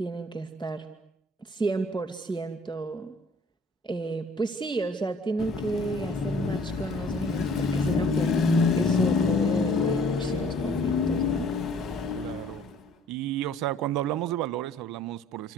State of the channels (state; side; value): normal; both; correlation 0.54